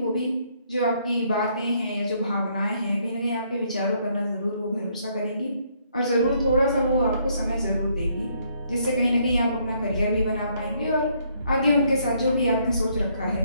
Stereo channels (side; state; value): both; inverted; correlation -0.70